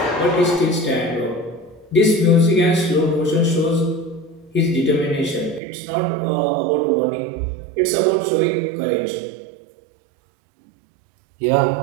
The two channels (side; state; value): left; drops out; at 5.6 s